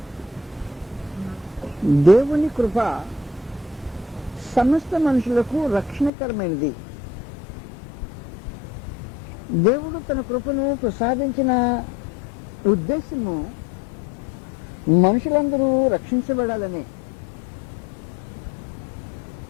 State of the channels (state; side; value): drops out; right; at 6.1 s